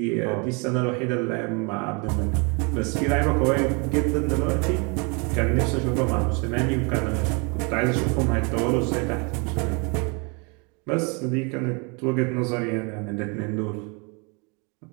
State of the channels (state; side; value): quieter; left; 32.5 dB